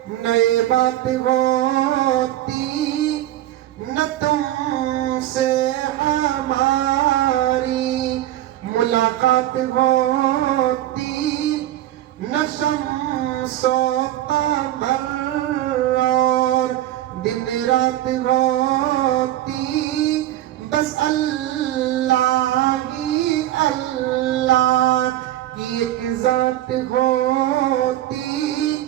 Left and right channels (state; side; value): quieter; left; 13.6 dB